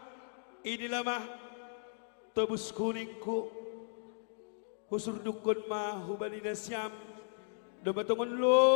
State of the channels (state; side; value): silent; right; digital silence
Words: Inilah mah tobus kuningku husur dukun mah hubali nasyam dumatungon